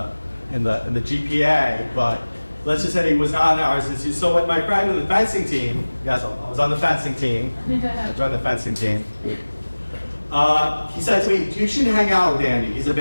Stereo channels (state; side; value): inverted; both; correlation -1.00